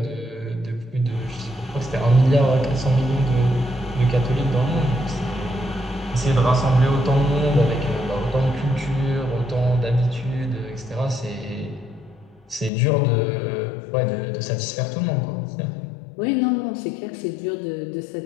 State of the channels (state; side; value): drops out; right; at 12.7 s